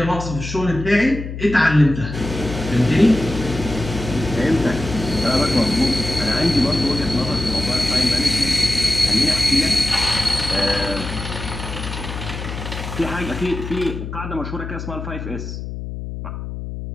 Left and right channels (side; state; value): left; noise; hum, 8 dB below the sound